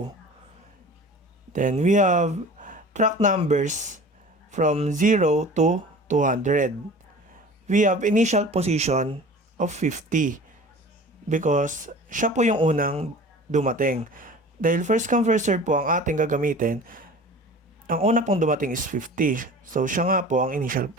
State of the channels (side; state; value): both; normal; correlation 0.40